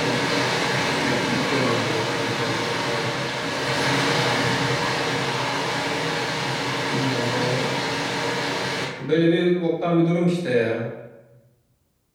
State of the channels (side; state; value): both; identical; correlation 1.00